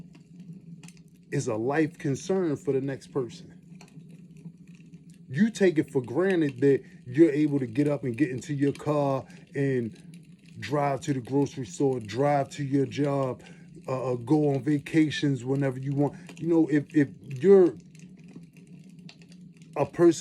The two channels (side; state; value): both; identical; correlation 1.00